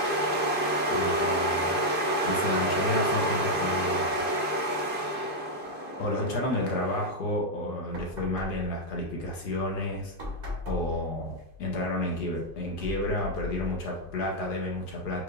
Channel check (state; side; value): late; right; 2.5 ms